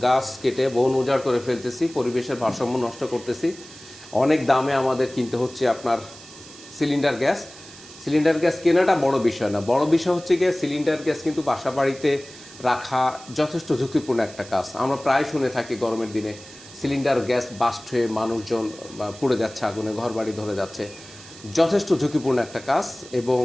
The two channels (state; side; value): noise; right; hiss, 18 dB below the sound